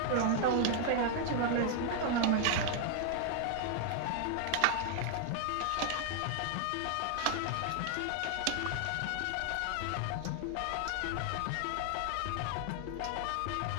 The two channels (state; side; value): different; both; correlation 0.00